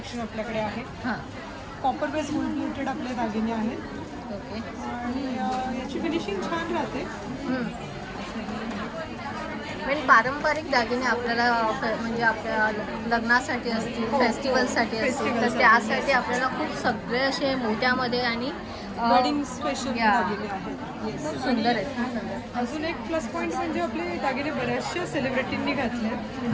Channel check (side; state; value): both; identical; correlation 1.00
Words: आपल्याकडे आहे. हां. कॉपर बेस गोल्ड प्लेटेड आपले दागिने आहेत ओके. आणि याची फिनिशिंग छान राहते. म्हणजे पारंपरिक दागिने आपल्याला म्हणजे आपल्या लग्नासाठी असतील, फेस्टिवलसाठी असतील, तर त्यासाठी आपल्याला खूप सगळे असे मोत्यामध्ये आणि वेडिंग स्पेशल या. दागिने आहेत. खूप सुंदर आहेत. अजून एक प्लस पॉईंट म्हणजे आपले दागिने बऱ्याचशा सेलिब्रिटींनी घातले.